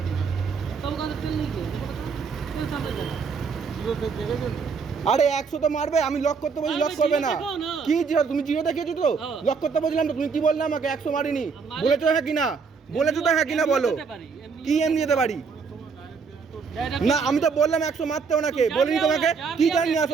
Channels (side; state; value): left; quieter; 5.4 dB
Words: তবে কাছে তেল নেই কে? তেল সামনে দাও। জিরো তেল দেখেছো? আরে 100 তো মারবে, আমি লক করতে বলছি লক করবে না। কি জিরো? তুমি জিরো দেখিয়েছো তো? লক করতে বলছিলাম তো, তুমি কি বললে আমাকে 100 মারিনি? বলেছো হ্যাঁ কি না? বলেছো তো হ্যাঁ কি না বলো? কি এমনি যেতে পারি? না আমি তো বললাম 100 মারতে ওনাকে, বলিনি তোমাকে? কি জানি আসো,